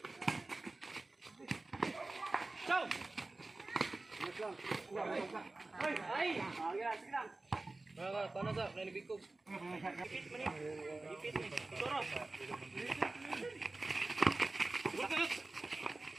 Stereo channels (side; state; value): left; quieter; 3.1 dB